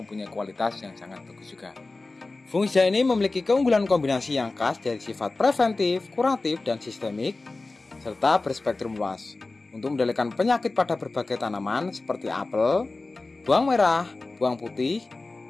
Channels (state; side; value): quieter; right; 3.4 dB